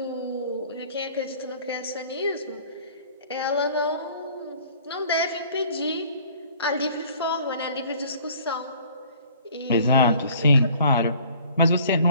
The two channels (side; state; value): both; inverted; correlation -0.52